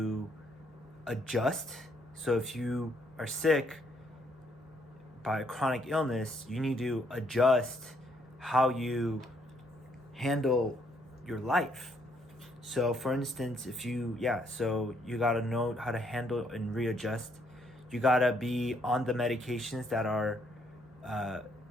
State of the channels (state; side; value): normal; both; correlation 0.71